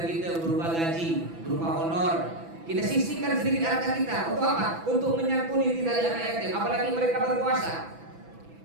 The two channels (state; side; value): late; left; 6.0 ms